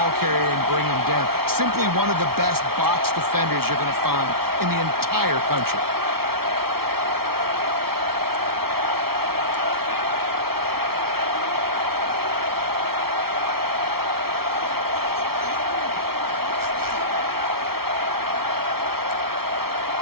carrier and bring him down. Simply one of the best box defenders you're going to find in the entire country.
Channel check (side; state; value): left; late; 0.94 ms